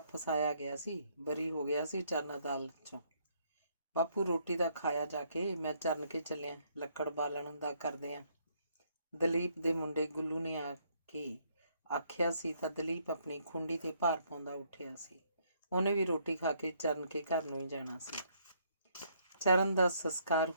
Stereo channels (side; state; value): both; inverted; correlation -0.69